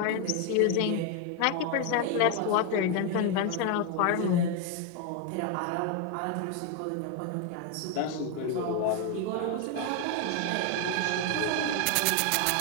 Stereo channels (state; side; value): different; both; correlation 0.01